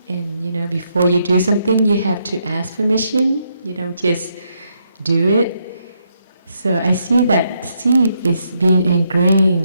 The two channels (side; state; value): both; inverted; correlation -0.77